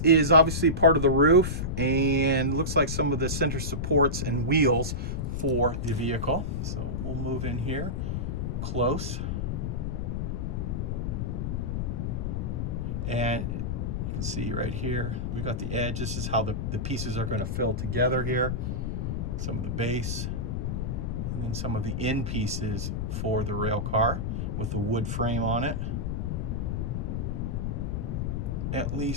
obviously part of the roof and looks like some of the center supports and wheels for the vehicle. So we'll move in here close. And you can see right here, we've got the edge. This is how the pieces are going to fill together here. Some of the base, and then some of the end pieces for the rail car with the wood frame on it. At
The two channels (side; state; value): left; noise; rumble, 1 dB below the sound